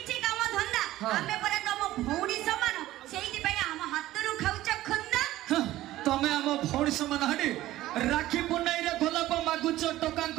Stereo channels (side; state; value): left; quieter; 15.4 dB